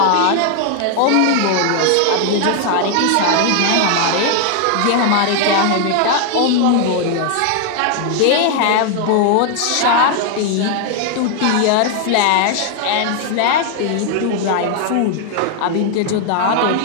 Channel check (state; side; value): different; both; correlation 0.00